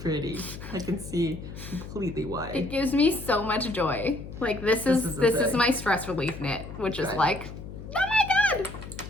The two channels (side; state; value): left; noise; hum, 11 dB below the sound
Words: I can see completely why. It gives me so much joy. Like this is my stress relief knit, which is like, oh my god.